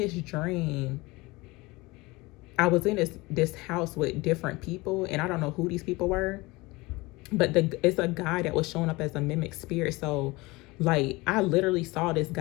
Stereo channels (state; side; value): quieter; right; 22.6 dB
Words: dream, I was in this house with different people, and I don't know who these people were, but it's a guy that was showing up as a mimic spirit. So like I literally saw this